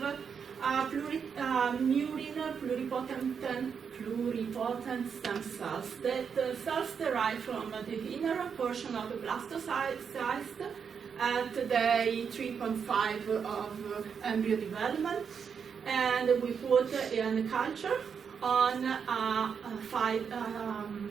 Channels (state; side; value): quieter; left; 6.6 dB